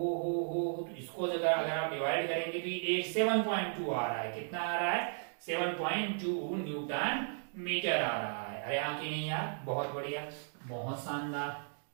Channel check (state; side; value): silent; left; digital silence